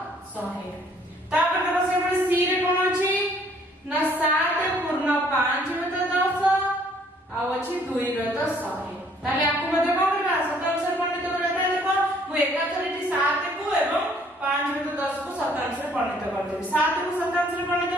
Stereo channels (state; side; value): normal; both; correlation 0.61